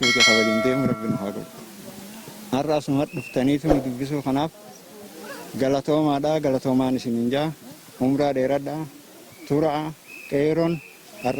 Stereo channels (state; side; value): identical; both; correlation 1.00